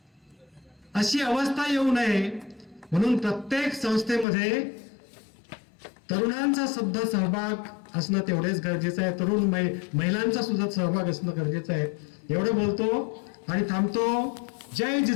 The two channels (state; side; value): drops out; right; at 4.2 s